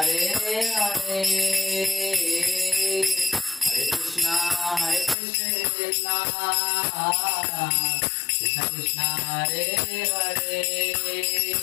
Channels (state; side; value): drops out; right; at 5.2 s